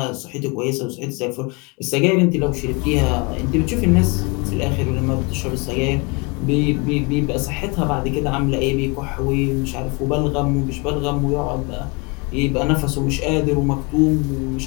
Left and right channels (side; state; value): right; quieter; 29.1 dB